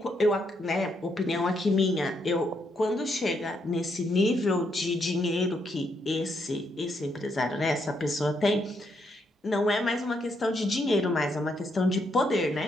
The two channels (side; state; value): both; normal; correlation 0.77